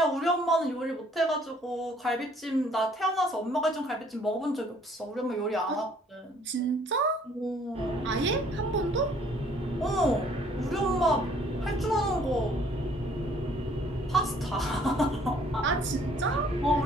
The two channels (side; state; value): both; normal; correlation 0.60